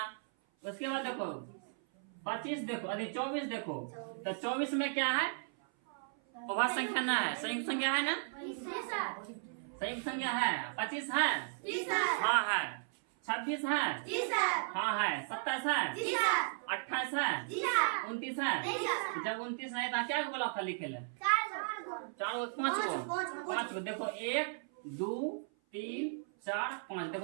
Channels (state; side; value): silent; left; 54 dB below the other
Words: उसके बाद देखो 25 देखो, अरे 24 देखो, तो 24 में क्या है, अभाज्य संख्या ना है, संयुक्त संख्या है ना, संयुक्त संख्या है। 25 है, हाँ है। 26 है, हाँ है। 27 है, 28 है, 29 है। जब 29 नहीं था क्या बोला था लिखे ले, 4 5 को देखो, 1 2 3 4 5